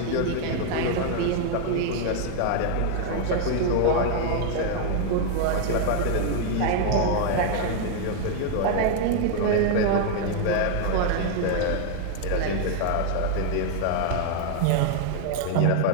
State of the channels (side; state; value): both; different; correlation 0.00